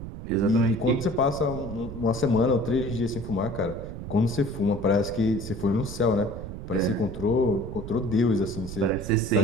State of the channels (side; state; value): right; noise; rumble, 9 dB below the sound